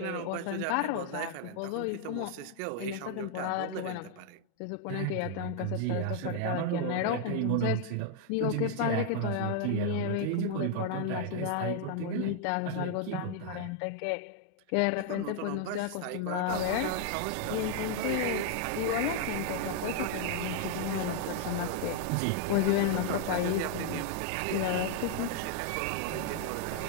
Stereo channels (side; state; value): both; different; correlation 0.00